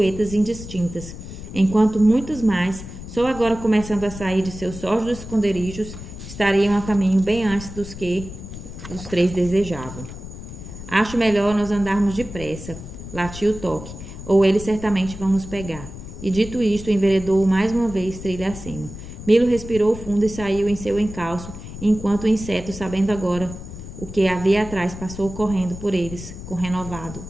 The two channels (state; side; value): noise; left; rumble, 12 dB below the sound